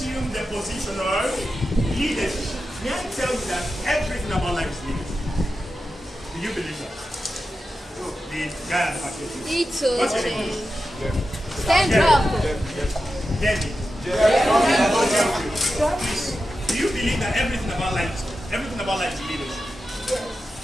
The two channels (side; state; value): both; normal; correlation 0.91